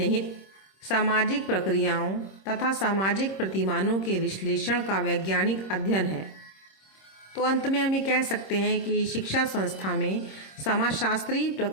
सामाजिक प्रक्रियाओं तथा सामाजिक प्रतिमानों के विश्लेषण का वैज्ञानिक अध्ययन है। तो अंत में हम ये कह सकते हैं कि शिक्षा संस्था में समाजशास्त्रीय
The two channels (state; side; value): late; right; 26 ms